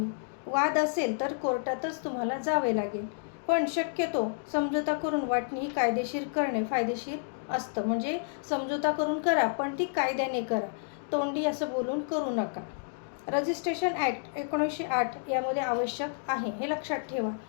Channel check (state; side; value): silent; right; digital silence